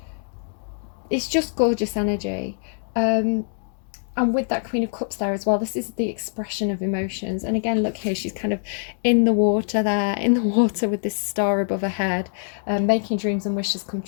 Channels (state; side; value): silent; right; digital silence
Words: it's just gorgeous energy. And with that Queen of Cups there as well, this is the expression of emotions. And again, look here, she's kind of in the water there, in the water with this star above her head, making dreams and wishes come